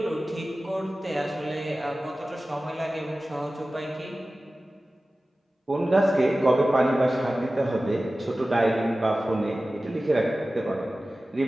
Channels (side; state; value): both; normal; correlation 0.96